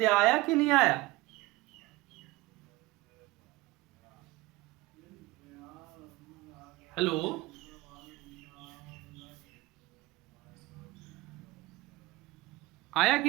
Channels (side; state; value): left; quieter; 19.8 dB